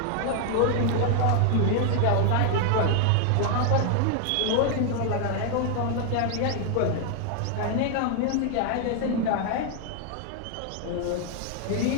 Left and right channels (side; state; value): both; different; correlation 0.00